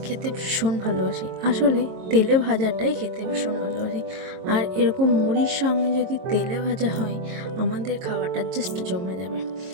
খেতে ভীষণ ভালোবাসি। আসলে তেলে ভাজাটাই খেতে ভীষণ ভালোবাসি। আর এরকম মুড়ির সঙ্গে যদি তেলে ভাজা হয়, আমাদের খাওয়াটা জাস্ট জমে যাবে।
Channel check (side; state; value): left; late; 22 ms